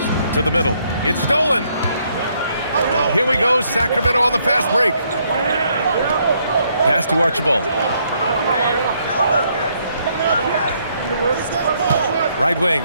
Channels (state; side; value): inverted; both; correlation -0.71